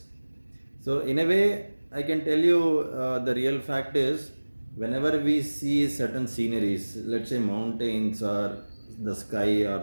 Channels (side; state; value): both; inverted; correlation -1.00